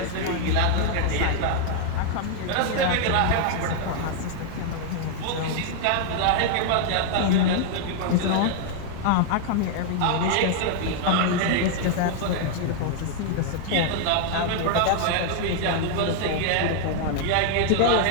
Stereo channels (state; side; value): different; both; correlation 0.00